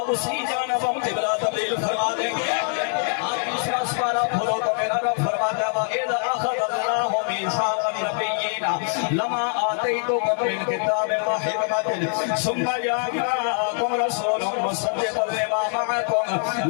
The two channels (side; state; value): right; silent; 57 dB below the other